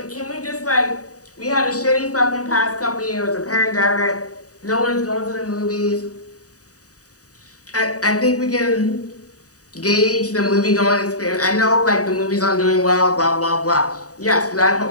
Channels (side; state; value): right; late; 0.66 ms